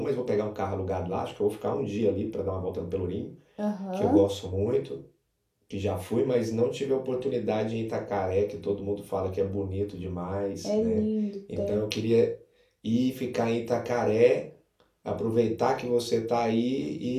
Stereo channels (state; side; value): identical; both; correlation 1.00